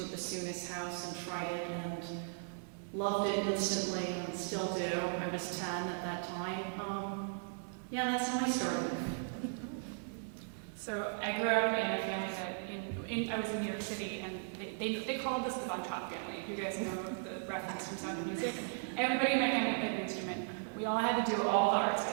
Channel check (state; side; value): silent; left; 53 dB below the other